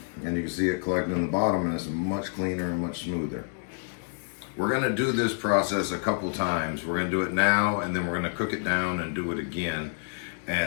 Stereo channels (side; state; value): right; silent; 59 dB below the other